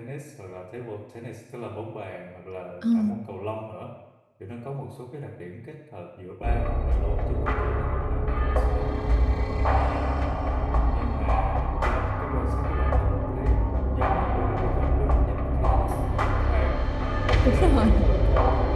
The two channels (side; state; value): both; identical; correlation 1.00